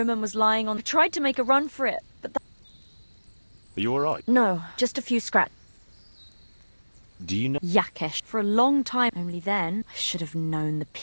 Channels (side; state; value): both; inverted; correlation -1.00